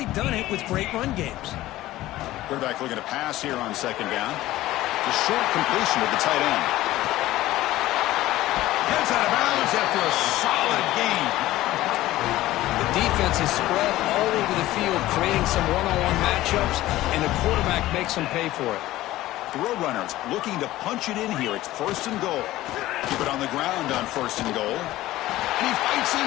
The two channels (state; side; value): quieter; right; 16.0 dB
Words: done it with great run games. Quarterback looking to pass here on second down. The short completion of the tight end. Gets out of bounds after a solid gain. The defense is spread all over the field, creating some one-on-one matchups, and the quarterback makes them pay for it. The Roadrunners looking to punch it in here. It's first and goal. Keep it on the ground on first and goal. And he fights